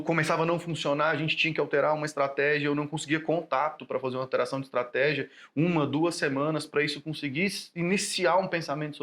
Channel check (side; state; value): both; identical; correlation 1.00